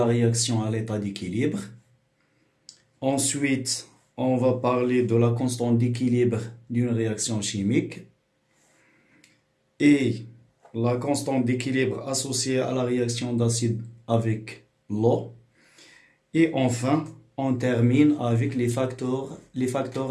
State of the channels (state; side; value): identical; both; correlation 1.00